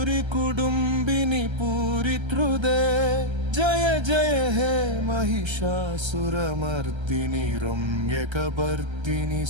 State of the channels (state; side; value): late; left; 1.3 ms